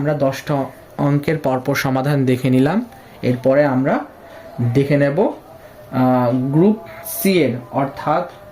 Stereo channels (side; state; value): both; identical; correlation 1.00